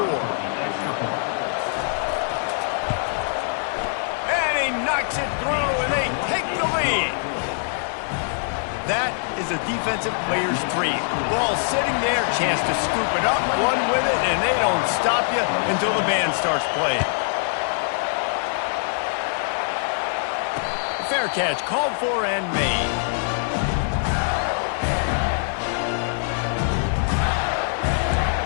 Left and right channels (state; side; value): silent; right; digital silence